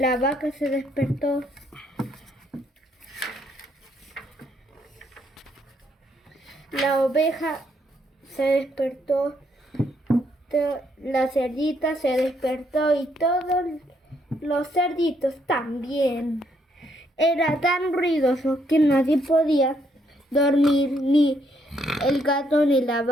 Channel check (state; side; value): normal; both; correlation 0.73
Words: vaca se despertó, la oveja se despertó, la cerdita se despertó y todos los cerditos también. Era tan ruidoso que nadie podía dormir, ni el gato, ni la